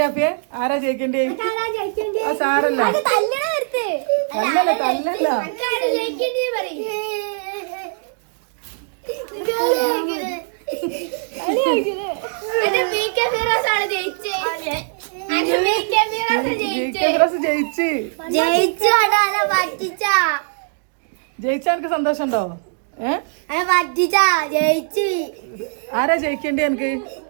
അപ്പിയെ? ആരാ ജയിക്കേണ്ടി? സാറല്ല ജയിച്ചാ എനിക്ക് സന്തോഷം ഉണ്ടോ? ആരാ ജയിക്കേണ്ടി? എനിക്ക്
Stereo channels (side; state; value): left; silent; digital silence